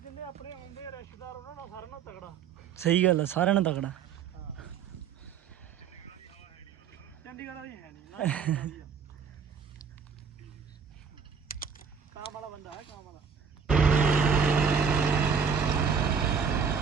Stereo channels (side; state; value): left; quieter; 6.5 dB